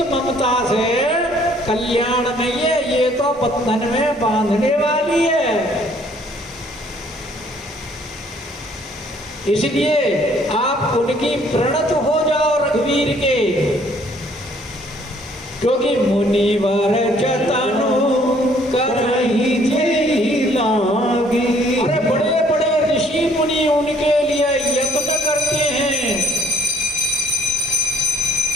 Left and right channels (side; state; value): both; normal; correlation 0.61